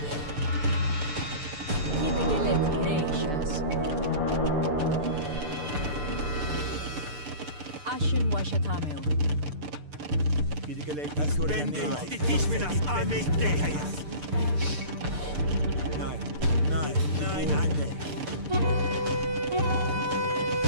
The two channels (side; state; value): left; late; 6.8 ms